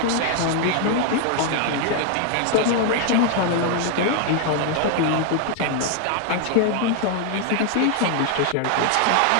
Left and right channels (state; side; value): different; both; correlation 0.00